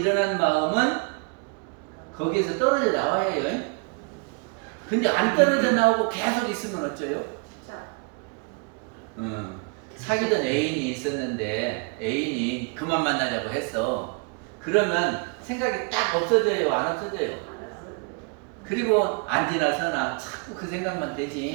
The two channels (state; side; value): quieter; left; 33.6 dB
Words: 마음은 거기에서 떨어져 나와야 해요. 근데 안 떨어져 나오고 계속 있으면 어쩌요? 사귀던 애인이 있었는데 애인이 그만 만나자고 했어. 그러면 생각이 딱 없어져요? 안 없어져요? 그리고 안 지나서나 자꾸 그 생각만